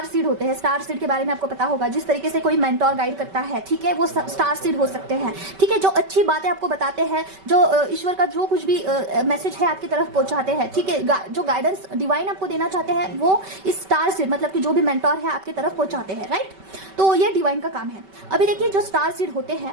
सीड होते हैं, स्टार सीड के बारे में आपको पता होगा, जिस तरीके से कोई मेंटोर गाइड करता है, ठीक है, वो स्टार सीड हो सकते हैं, ठीक है। जो अच्छी बातें आपको बताते हैं, जो ईश्वर का जो कुछ भी मैसेज है आपकी तरफ पहुंचाते हैं, ठीक है, जो गाइडेंस डिवाइन आपको देना चाहते हैं, वो इस स्टार सीड मतलब कि जो भी मेंटोर है आपकी तरफ पहुंचाते हैं, राइट। तो ये डिवाइन का काम है। अभी देखिए जो स्टार सीड होते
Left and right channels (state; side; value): late; left; 5.2 ms